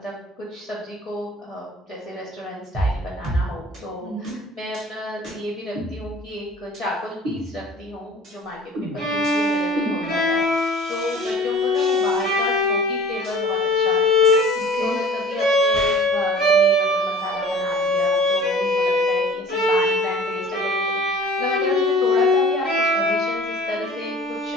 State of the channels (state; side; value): normal; both; correlation 0.46